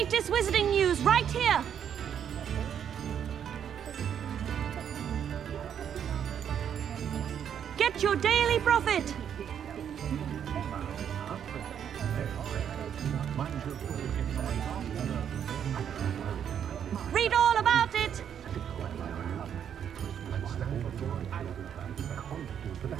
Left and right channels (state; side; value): quieter; left; 8.7 dB